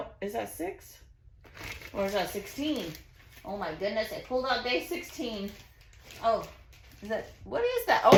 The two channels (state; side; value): identical; both; correlation 1.00